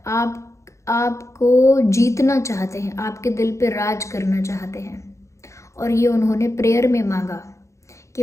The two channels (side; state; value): right; late; 0.14 ms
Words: आपको जीतना चाहते हैं, आपके दिल पे राज करना चाहते हैं। और ये उन्होंने प्रेयर में मांगा कि